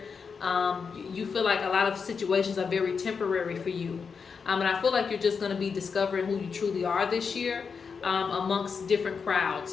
You feel like a lot of situations are very temporary for you. And I feel like you're just going to be discovering who you truly are this year amongst different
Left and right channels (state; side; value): quieter; right; 5.7 dB